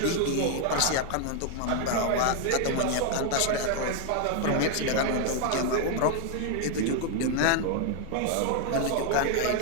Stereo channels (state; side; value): different; both; correlation 0.00